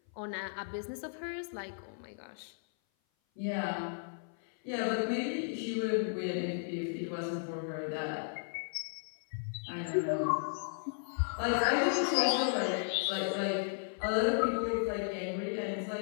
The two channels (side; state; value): right; silent; 55 dB below the other